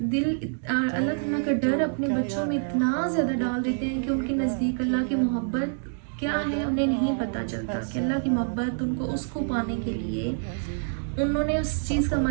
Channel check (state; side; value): silent; left; digital silence